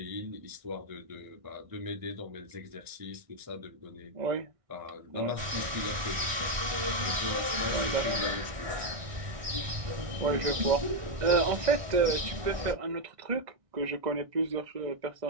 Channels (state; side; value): late; left; 1.6 ms